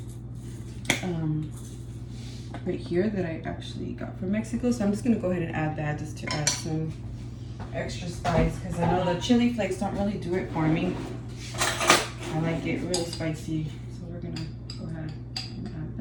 right here that I actually got from Mexico. So I'm just gonna go ahead and add that just to add some extra spice, because I know the chili flakes don't really do it for me. I like it real spicy, so we're gonna go ahead and add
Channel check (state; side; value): identical; both; correlation 1.00